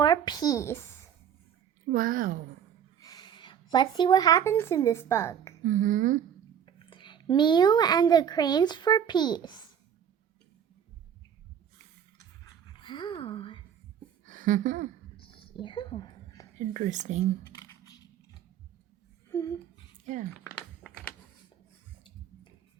peace. Wow. Let's see what happens in this book. Mm-hmm. Miyu and the grains for peace. Wow. Yeah. Interesting. Yeah.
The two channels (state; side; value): quieter; left; 8.7 dB